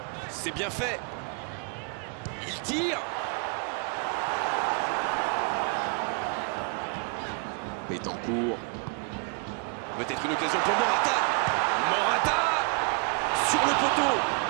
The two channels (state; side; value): quieter; left; 36.8 dB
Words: C'est bien fait. Il tire. Betancourt. Peut-être une occasion pour Morata. Morata sur le poteau.